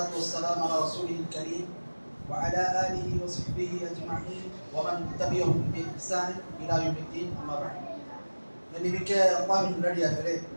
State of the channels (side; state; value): both; inverted; correlation -1.00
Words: والسلام على رسوله الكريم وعلى آله وصحبه أجمعين ومن تبعهم بإحسان إلى يوم الدين. أما بعد. நன்றிமிக்க அல்லாஹ்வின் நல்லடியார்களே,